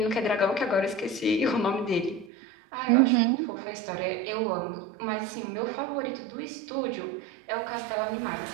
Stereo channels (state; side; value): drops out; left; at 2.3 s